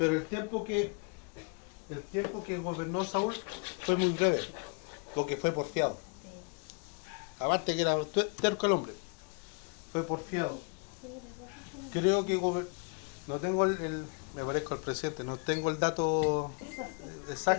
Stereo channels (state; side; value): quieter; right; 35.1 dB